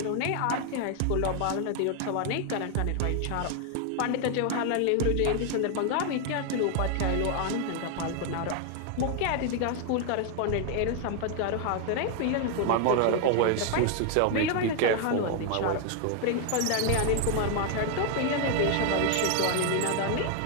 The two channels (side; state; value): both; different; correlation 0.00